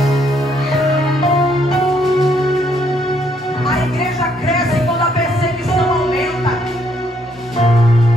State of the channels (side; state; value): both; normal; correlation 0.70